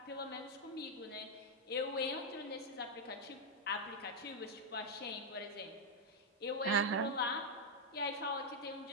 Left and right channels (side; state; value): both; normal; correlation -0.01